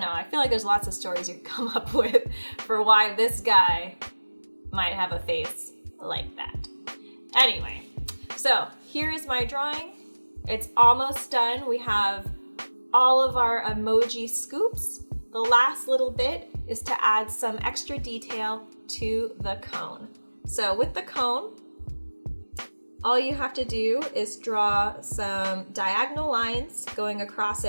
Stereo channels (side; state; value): both; inverted; correlation -1.00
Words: know. I feel like there's lots of stories you can come up with for why this guy might have a face like that. Anyway, so here is my drawing. It's almost done. We have all of our emoji scoops. The last little bit is to add some extra detail to the cone. So with the cone, all you have to do is draw some diagonal lines going across